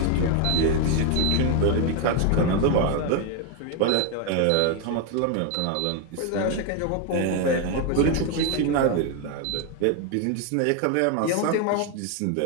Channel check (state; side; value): different; both; correlation 0.01